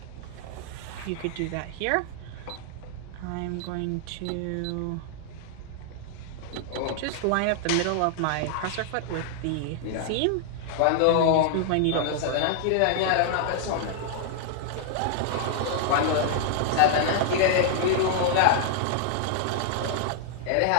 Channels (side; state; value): both; different; correlation -0.01